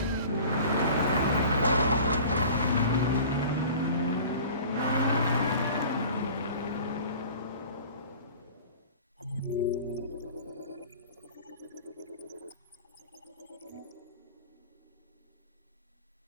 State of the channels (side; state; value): both; inverted; correlation -0.43